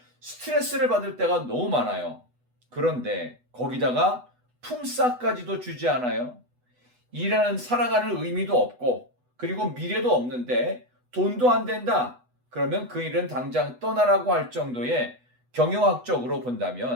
스트레스를 받을 때가 너무 많아요. 그런데 거기다가 품삯까지도 주지 않아요. 일하는 살아가는 의미도 없고 그리고 미래도 없는데 돈도 안 된다. 그러면 그 일은 당장 떠나라고 할 정도의 경영학적으로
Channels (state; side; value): late; left; 8.1 ms